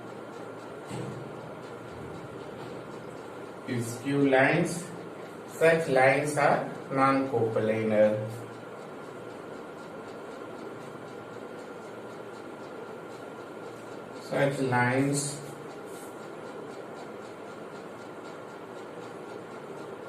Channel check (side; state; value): both; identical; correlation 1.00